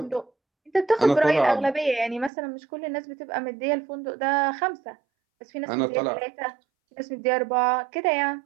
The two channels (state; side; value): drops out; left; at 2.3 s